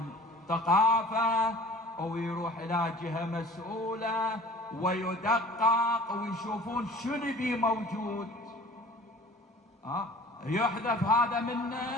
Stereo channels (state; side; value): normal; both; correlation 0.47